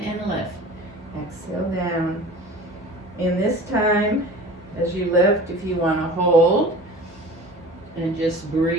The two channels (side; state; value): both; normal; correlation 0.40